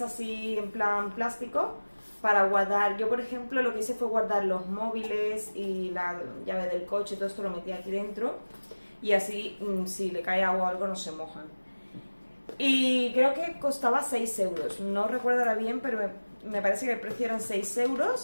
en plan plástico para guardar. Yo, por ejemplo, lo que hice fue guardar los móviles y la llave del coche, todo esto lo metí aquí dentro y así si le cae agua o algo no se mojan. Y creo que costaba 6 euros. No recuerdo ahora bien, pero me parece que el precio eran 6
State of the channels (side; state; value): both; inverted; correlation -1.00